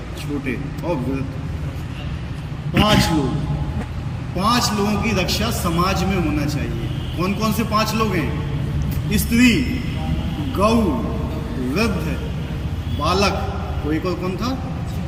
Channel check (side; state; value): both; identical; correlation 1.00